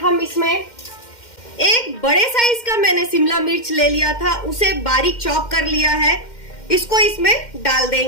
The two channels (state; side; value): late; right; 2.1 ms